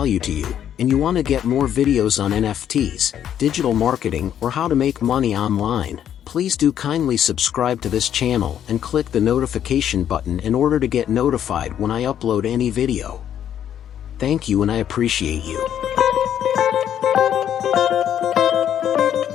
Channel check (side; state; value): right; quieter; 9.9 dB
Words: to you, and you want to get more videos on NFTs, digital marketing, or how to make money online, please do kindly subscribe to this channel and click the notification button in order to get notified when I upload any video. Thank you and I appreciate you.